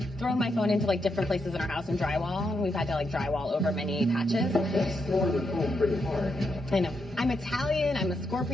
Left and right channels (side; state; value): both; normal; correlation 0.82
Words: thrown my phone into like different places in our house and drywall, and we've had to like drywall over many patches. That's throwing the phone pretty hard. I know. I'm Italian. I'm a